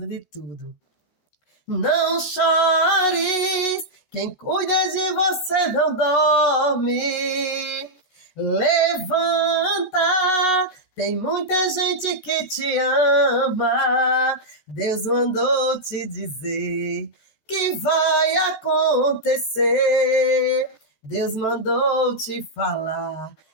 de tudo. Não chores, quem cuida de você não dorme. Levanta, tem muita gente que te ama. Deus mandou te dizer que vai acontecer. Deus mandou te falar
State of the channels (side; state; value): right; late; 14 ms